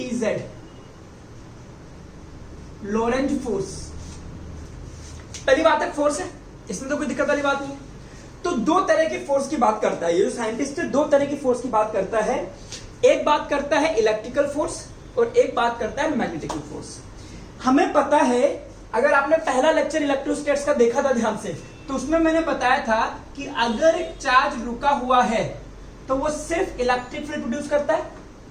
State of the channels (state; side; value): identical; both; correlation 1.00